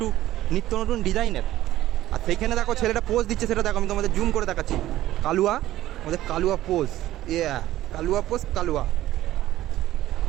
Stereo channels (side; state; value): left; quieter; 14.5 dB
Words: নিত্য নতুন ডিজাইনের। আর সেইখানে দেখো ছেলেটা পোজ দিচ্ছে, সেটা দেখো আমি তোমাদের জুম করে দেখাচ্ছি। কালুয়া, আমাদের কালুয়া পোজ, কালুয়া পোজ, কালুয়া।